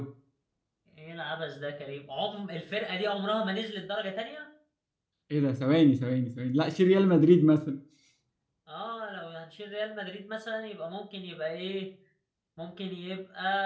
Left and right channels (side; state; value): both; identical; correlation 1.00